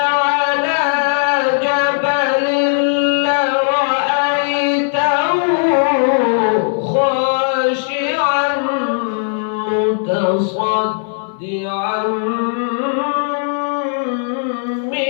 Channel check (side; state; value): right; silent; digital silence